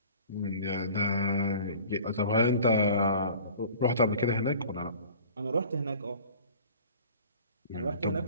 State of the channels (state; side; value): inverted; both; correlation -0.45